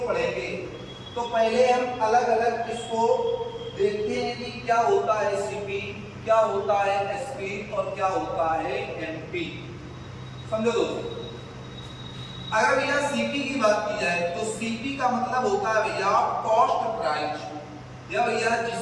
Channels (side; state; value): both; identical; correlation 1.00